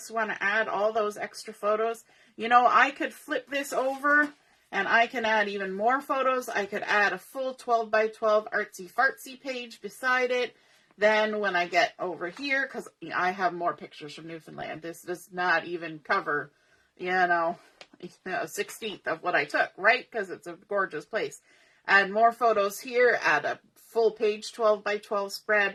want to add all those extra photos, you know, I could flip this over and I can add even more photos. I could add a full 12 by 12 artsy fartsy page beside it. Then when I get over here, because I have more pictures from Newfoundland, this does not even cover, you know, a 16th of what I took, right? Because it's a gorgeous place. Add more photos here, add a full page 12 by 12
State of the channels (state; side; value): identical; both; correlation 1.00